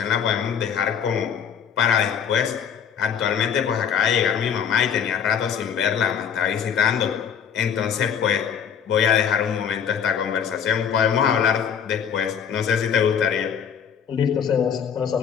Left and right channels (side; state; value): right; quieter; 7.9 dB